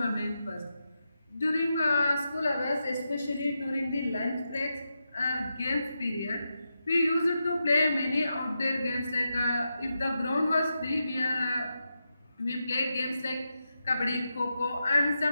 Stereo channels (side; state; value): both; inverted; correlation -0.87